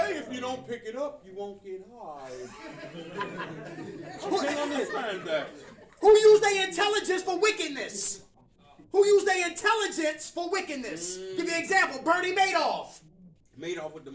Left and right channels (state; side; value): identical; both; correlation 1.00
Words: if you don't pick it up, you won't get high. I can't understand that. Who use their intelligence for wickedness? Who use their intelligence for wickedness? Give you an example. Bernie Madoff. Madoff with the